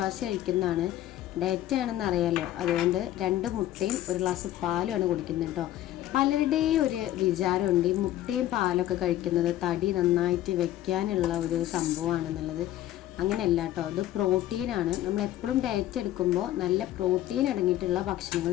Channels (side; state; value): right; quieter; 13.7 dB